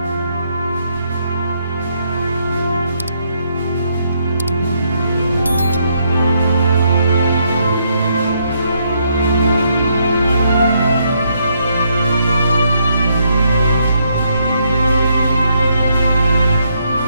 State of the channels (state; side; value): inverted; both; correlation -0.74